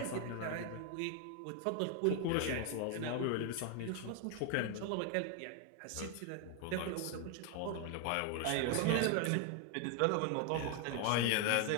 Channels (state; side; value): different; both; correlation 0.01